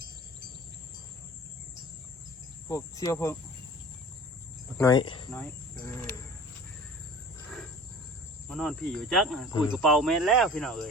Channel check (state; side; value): normal; both; correlation 0.42